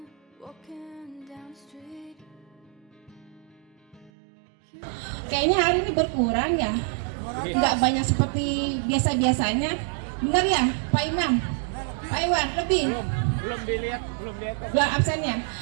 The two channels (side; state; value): left; drops out; at 4.1 s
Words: down the street. Kayaknya hari ini berkurang ya, nggak banyak seperti biasa-biasanya. Benar ya, Pak Imam? Pak Iwan, lebih? Belum dilihat. Belum absennya.